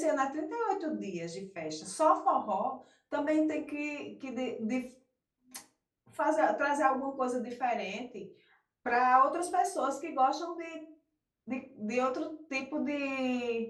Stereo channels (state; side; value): identical; both; correlation 1.00